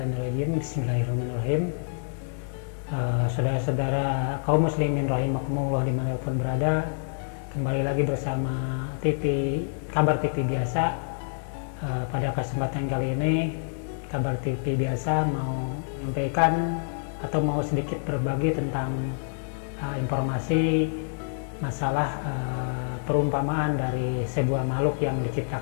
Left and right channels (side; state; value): right; silent; digital silence